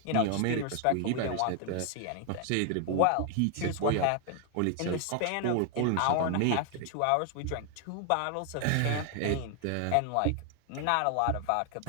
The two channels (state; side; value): different; both; correlation 0.00